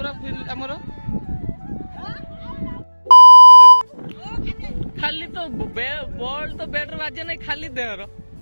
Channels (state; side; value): inverted; both; correlation -1.00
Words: हमर खाली तो बॉल तो बैट बाजे नहीं खाली देहर